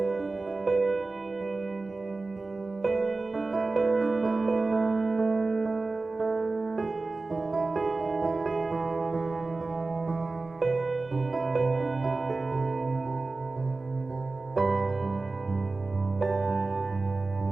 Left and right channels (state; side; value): quieter; left; 3.5 dB